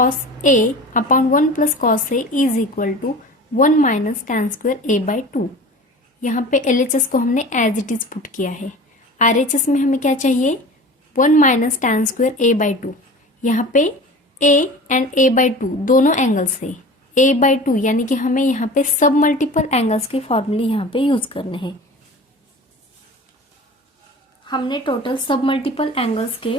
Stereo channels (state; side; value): normal; both; correlation 0.38